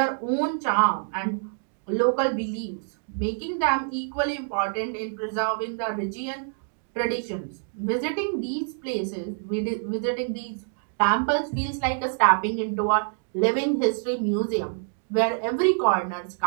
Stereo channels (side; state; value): left; silent; digital silence